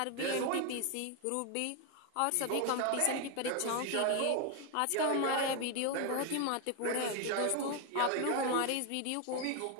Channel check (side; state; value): both; different; correlation 0.01